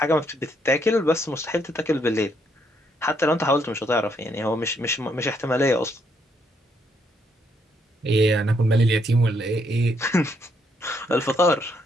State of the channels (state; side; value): normal; both; correlation 0.73